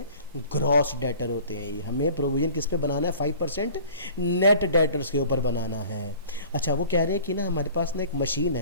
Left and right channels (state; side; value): inverted; both; correlation -0.46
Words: ग्रॉस डेटर होते हैं। ये हमें प्रोविजन किस पे बनाना है? 5% नेट डेटर्स के ऊपर बनाना है। अच्छा, वो कह रहे हैं कि ना हमारे पास ना एक मशीन